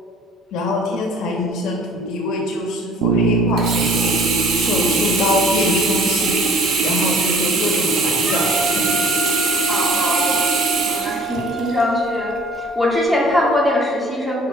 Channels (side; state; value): both; normal; correlation 0.52